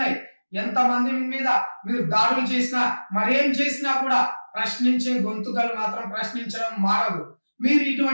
ఎంతమంది మీద మీరు దాడులు చేసినా, మరేం చేసినా కూడా ప్రశ్నించే గొంతుకలు మాత్రం ప్రశ్నించడం మారదు. మీరు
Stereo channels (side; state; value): both; inverted; correlation -1.00